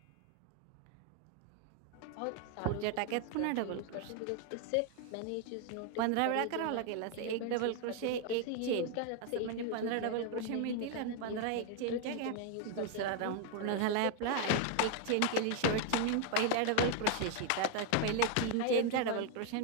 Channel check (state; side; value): different; both; correlation 0.00